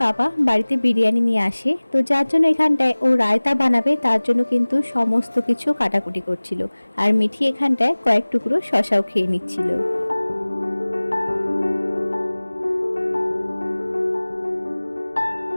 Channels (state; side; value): inverted; both; correlation -1.00